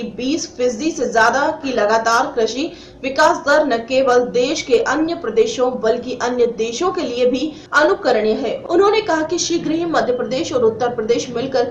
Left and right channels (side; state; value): both; identical; correlation 1.00